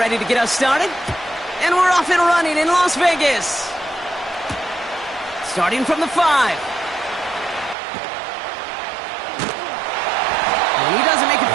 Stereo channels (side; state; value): left; drops out; at 7.8 s